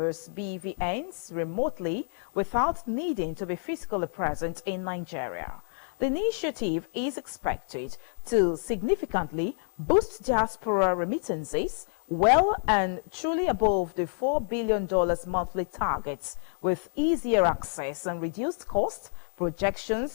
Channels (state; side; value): silent; right; 59 dB below the other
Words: BVNs, remotely without needing to be physically present in Nigeria. The initiative is expected to significantly boost diaspora remittances well and truly above the $4 billion monthly targets, with easier access and reduced cost.